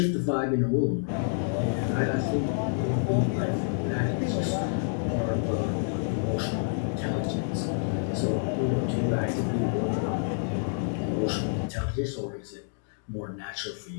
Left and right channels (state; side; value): silent; right; digital silence